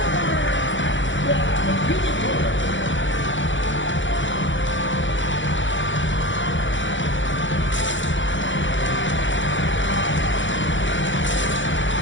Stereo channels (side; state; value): right; late; 0.55 ms